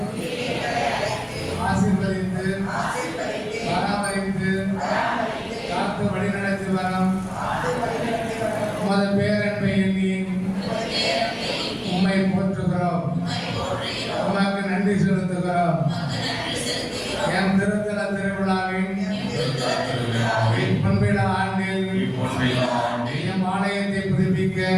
ஆசீர்வதித்து பராமரித்து காத்து வழிநடத்தி வரும் உமது பேரன்பை எண்ணி உம்மை போற்றுகிறோம். உமக்கு நன்றி செலுத்துகிறோம். என் திருத்தல திருவிழாவின் பொன்விழா ஆண்டில் எம் ஆலயத்தை புதுப்பிக்க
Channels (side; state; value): both; identical; correlation 1.00